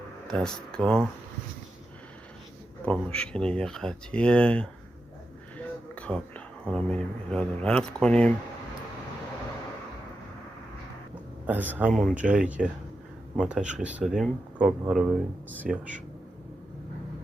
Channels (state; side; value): normal; both; correlation 0.89